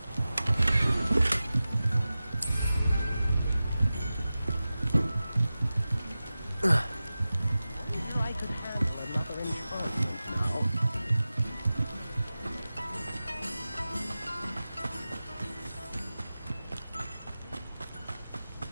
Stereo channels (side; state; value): both; inverted; correlation -0.95